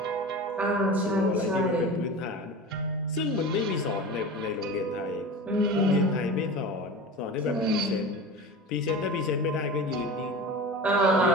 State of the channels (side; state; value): both; normal; correlation 0.32